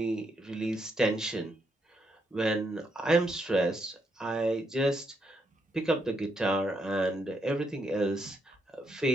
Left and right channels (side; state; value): both; normal; correlation 0.78